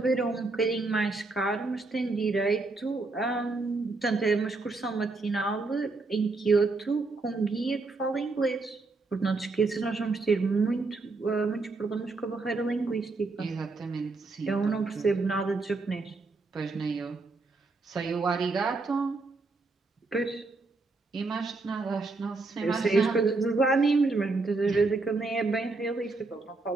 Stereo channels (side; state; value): left; quieter; 3.6 dB